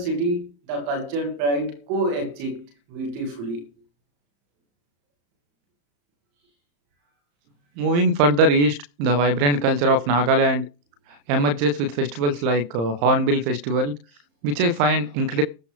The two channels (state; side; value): late; left; 35 ms